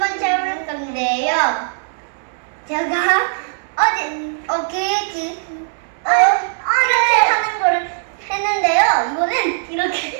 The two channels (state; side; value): silent; left; 67 dB below the other